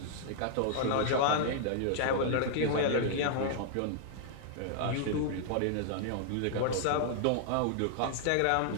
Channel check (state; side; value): different; both; correlation -0.01